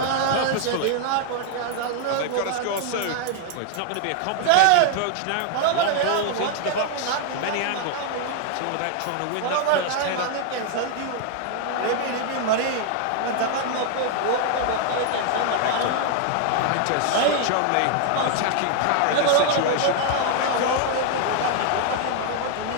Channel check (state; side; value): different; both; correlation 0.00